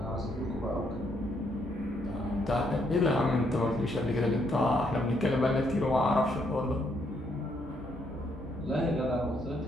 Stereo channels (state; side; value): normal; both; correlation 0.73